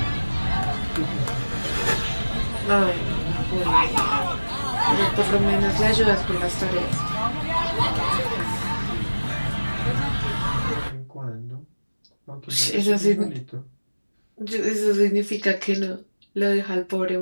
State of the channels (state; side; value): inverted; both; correlation -1.00